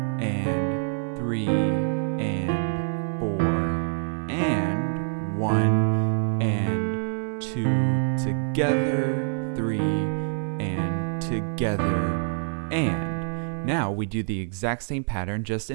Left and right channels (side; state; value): left; silent; 55 dB below the other